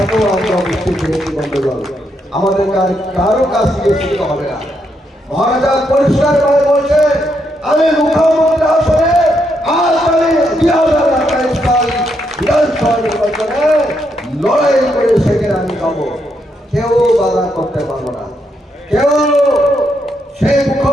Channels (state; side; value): normal; both; correlation 0.78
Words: আমরা বুঝতে পেরেছি। বন্ধুগণ, আমাদের কারো কাছ থেকে শিখতে হবে না। মহারাজা পরিষ্কার ভাবে বলছে, আমি মুখ্যমন্ত্রী আসনে আজ আমি 2028 সাল বিধানসভা নির্বাচনে লড়াই করে সেখানে আমি যাবো। কেউ বাধা করতে পারবো না। কেউ সেই